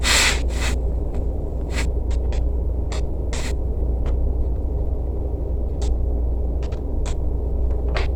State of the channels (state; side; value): identical; both; correlation 1.00